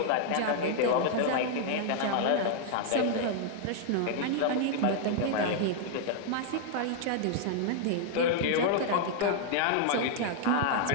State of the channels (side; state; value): both; different; correlation 0.00